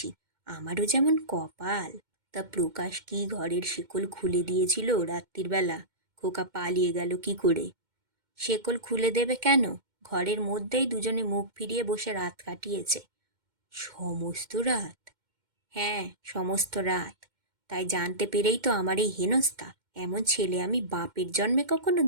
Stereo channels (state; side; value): late; left; 2.1 ms